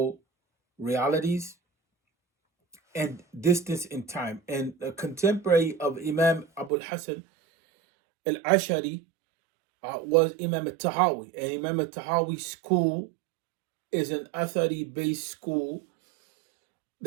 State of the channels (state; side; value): drops out; left; at 6.7 s